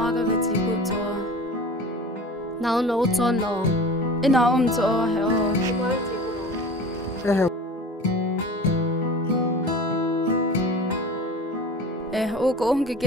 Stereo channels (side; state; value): both; normal; correlation 0.37